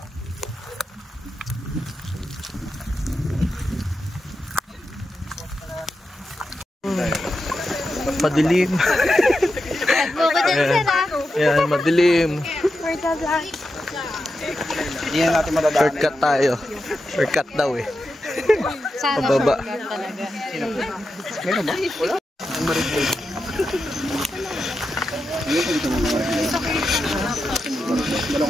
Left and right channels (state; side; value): normal; both; correlation 0.89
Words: Madilim. Yan, madilim. Hindi na natin madadaanan. Shortcut tayo. Shortcut daw eh. Pababa. Meron ba? Wala. Ang marigay.